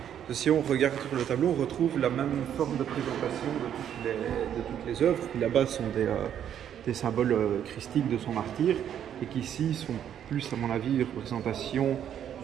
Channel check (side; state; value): left; quieter; 9.6 dB